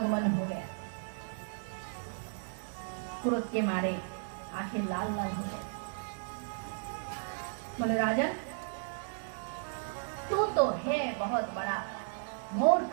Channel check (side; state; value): left; silent; digital silence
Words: हो गया। क्रोध के मारे आंखें लाल लाल हो गए। बोले राजन, तू तो है बहुत बड़ा मूर्ख,